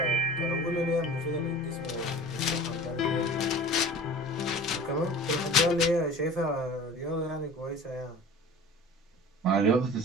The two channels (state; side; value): normal; both; correlation 0.41